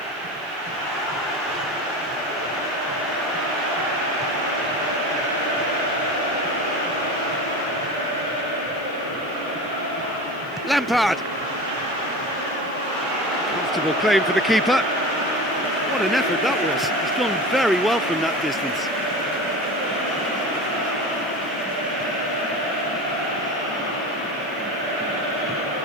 Lampard. Comfortable claim for the keeper. What an effort that was. He's done very well from that distance.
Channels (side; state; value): left; noise; hiss, 29 dB below the sound